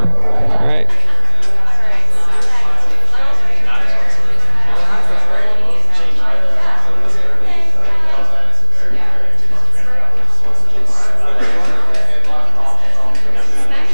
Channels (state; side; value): inverted; both; correlation -0.59